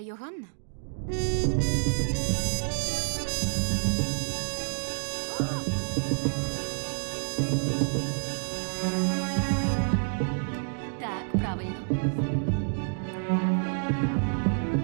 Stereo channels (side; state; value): left; silent; digital silence